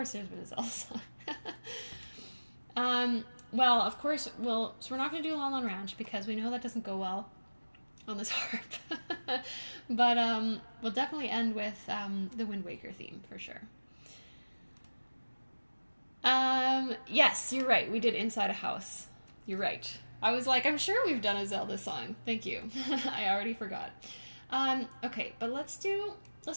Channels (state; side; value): inverted; both; correlation -1.00